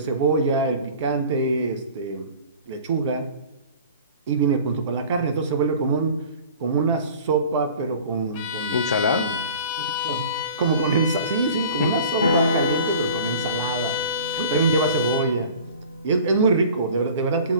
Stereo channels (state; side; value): inverted; both; correlation -0.44